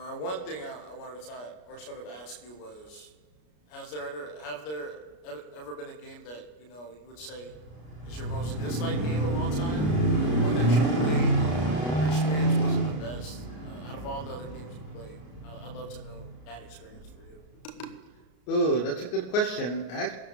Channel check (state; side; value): late; right; 33 ms